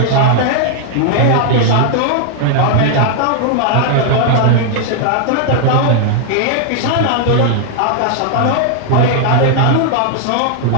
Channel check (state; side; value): different; both; correlation 0.00